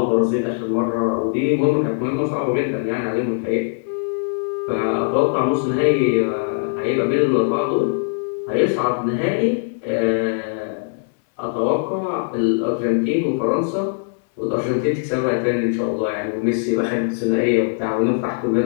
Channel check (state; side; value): silent; right; 65 dB below the other